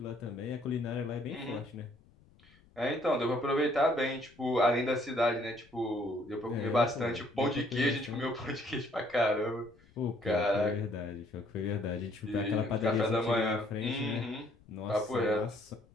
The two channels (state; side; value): noise; left; rumble, 28 dB below the sound